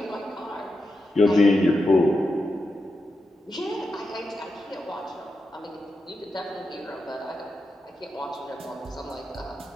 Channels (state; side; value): normal; both; correlation 0.88